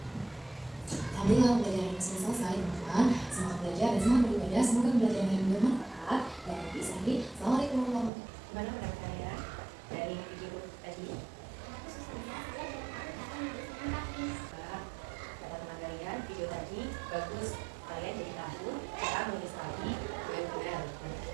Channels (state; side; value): drops out; left; at 8.1 s